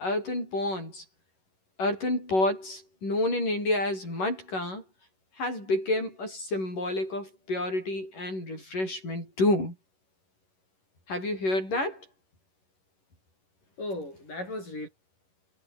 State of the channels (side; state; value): right; late; 11 ms